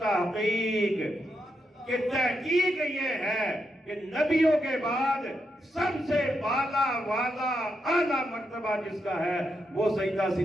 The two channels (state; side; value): normal; both; correlation 0.83